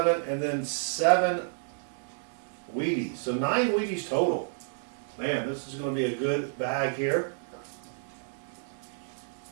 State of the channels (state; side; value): silent; left; digital silence